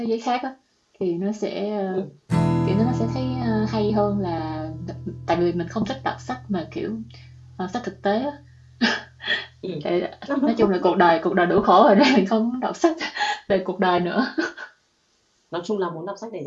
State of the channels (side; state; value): both; identical; correlation 1.00